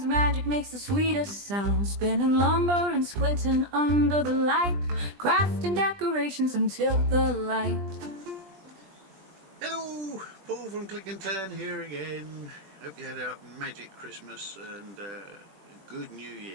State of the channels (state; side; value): late; left; 20 ms